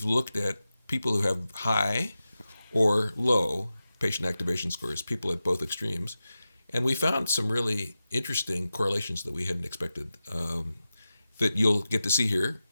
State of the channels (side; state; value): both; inverted; correlation -0.93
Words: looked at people who have high or low patient activation scores, people at both extremes, and we found some really interesting correlations that we hadn't expected that you'll get to see here.